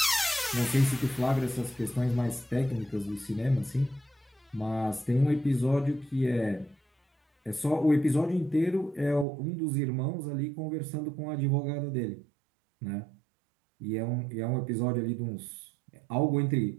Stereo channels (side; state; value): left; drops out; at 9.2 s